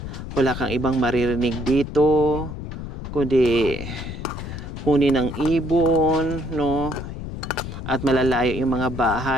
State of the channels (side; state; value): left; noise; rumble, 8 dB below the sound